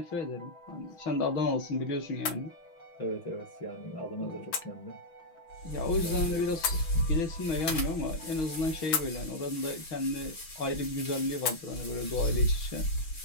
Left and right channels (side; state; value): right; late; 6.1 ms